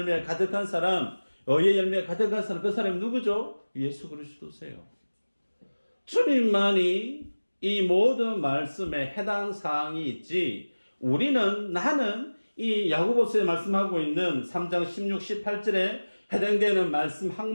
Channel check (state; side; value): inverted; both; correlation -1.00